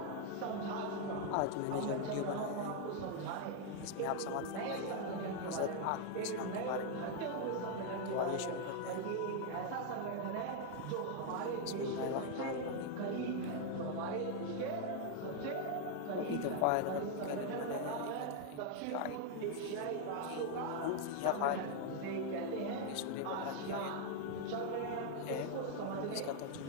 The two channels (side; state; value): both; different; correlation 0.00